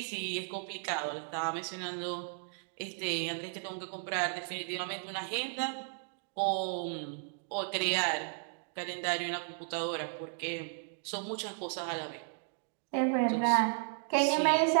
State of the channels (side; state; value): left; silent; digital silence